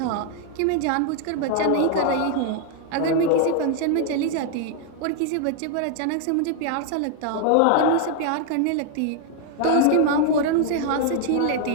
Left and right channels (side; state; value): both; different; correlation 0.00